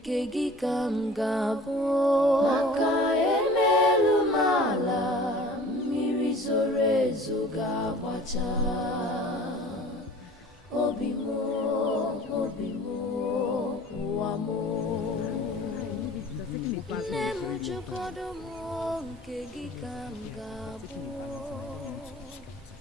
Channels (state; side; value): normal; both; correlation 0.45